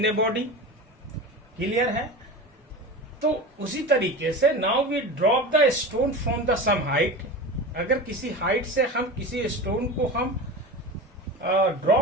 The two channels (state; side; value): normal; both; correlation 0.29